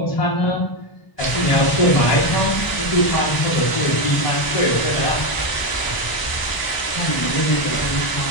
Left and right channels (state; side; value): late; right; 1.0 ms